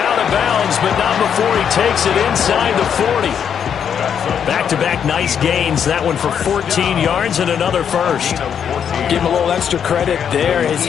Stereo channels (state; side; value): quieter; right; 8.0 dB